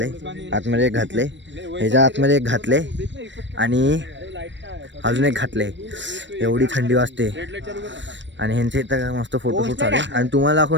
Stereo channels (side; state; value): left; late; 0.53 ms